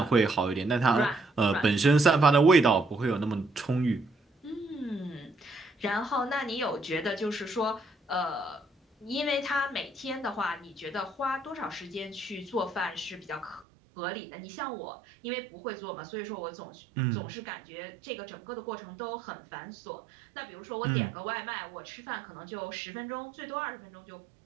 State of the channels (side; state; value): left; drops out; at 13.7 s